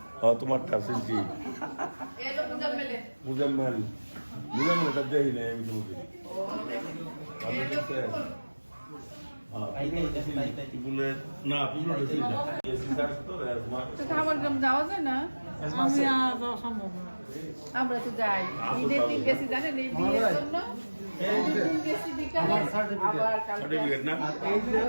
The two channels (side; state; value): both; inverted; correlation -1.00